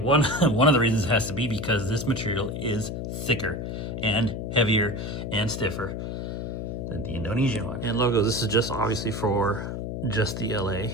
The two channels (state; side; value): noise; left; hum, 5 dB below the sound